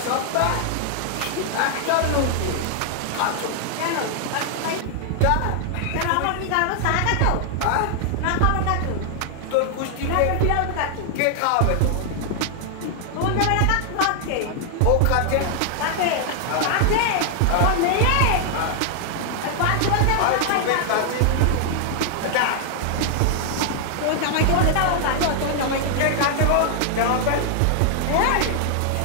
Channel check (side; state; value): both; different; correlation 0.00